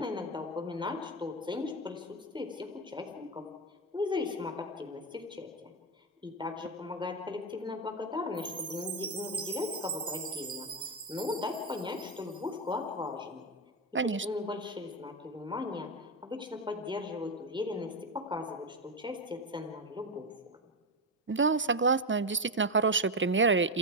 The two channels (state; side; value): normal; both; correlation 0.10